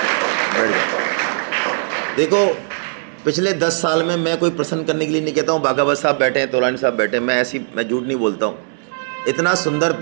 बढ़िया। देखो पिछले 10 साल में मैं कोई प्रश्न करने के लिए नहीं कहता हूँ, बाघावत साहब बैठे हैं, तोलानी साहब बैठे हैं, मैं झूठ नहीं बोलता हूँ। इतना सुंदर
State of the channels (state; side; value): silent; left; digital silence